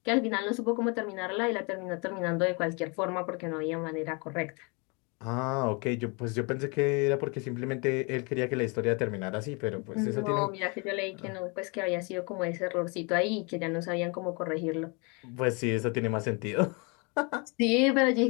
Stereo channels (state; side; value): quieter; right; 31.5 dB